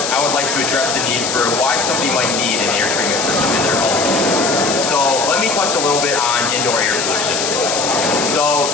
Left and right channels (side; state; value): left; noise; hiss, 2 dB below the sound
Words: I would like to address the need for why somebody might need an air treatment system in their home. So let me touch a little bit on indoor air pollution. So